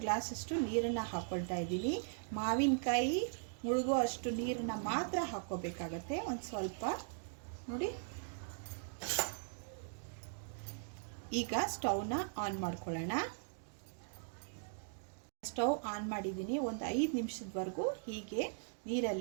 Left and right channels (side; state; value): left; silent; digital silence